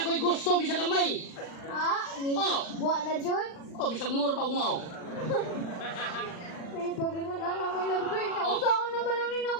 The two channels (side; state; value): right; late; 40 ms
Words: ko'y gusto bisag gamay. Ah, ni Oh. buwa na dyan? O bisag mura pa umaw. May pag-ingon na may lagay. Nausaon naman lang nina